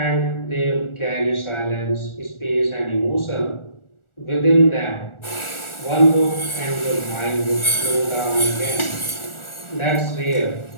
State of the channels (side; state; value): right; late; 1.4 ms